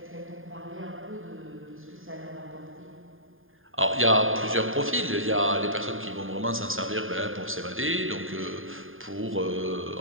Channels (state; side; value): late; left; 0.59 ms